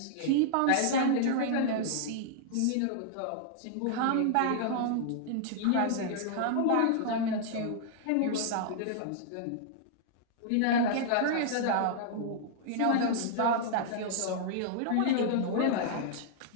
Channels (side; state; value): both; different; correlation -0.01